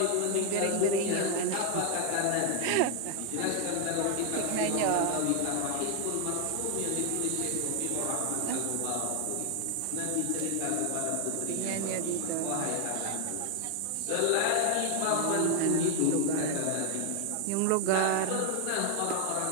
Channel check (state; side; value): different; both; correlation 0.00